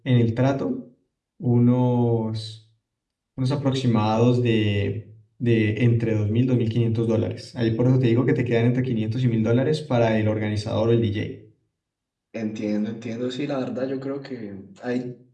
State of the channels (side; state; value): both; identical; correlation 1.00